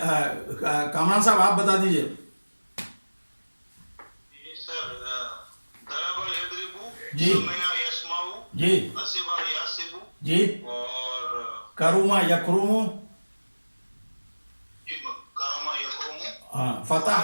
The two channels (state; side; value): inverted; both; correlation -1.00